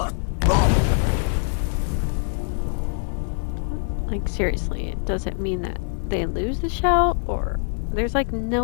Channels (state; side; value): silent; right; digital silence